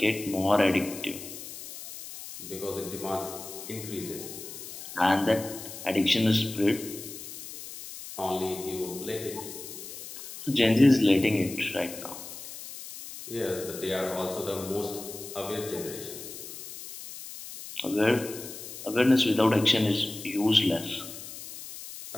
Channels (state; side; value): noise; left; hiss, 12 dB below the sound